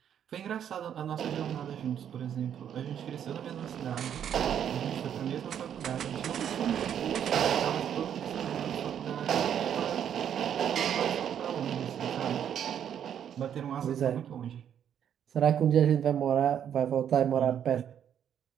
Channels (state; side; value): quieter; left; 9.2 dB